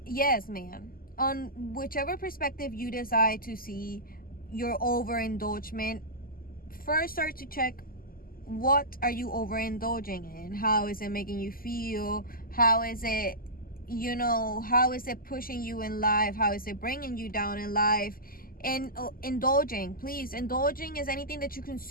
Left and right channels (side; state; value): right; late; 0.42 ms